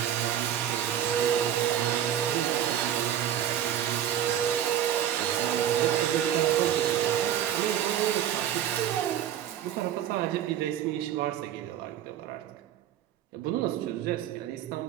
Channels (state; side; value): quieter; left; 10.6 dB